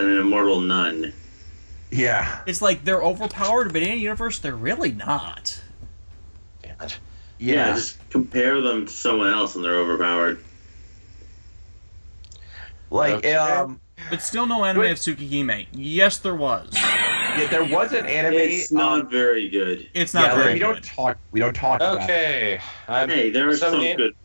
an immortal nun. Yeah. It's like they're overpowered, but in a universe, they're really not. Damn it. Yeah, just compare them to someone else and they're overpowered. Okay. But still no anime of Tsukihime. Yes, there was. Yeah, there was an anime. It's not very good. It's not yeah, very we good. We don't talk about it. Okay. Hey, there are some Somebody- good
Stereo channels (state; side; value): inverted; both; correlation -1.00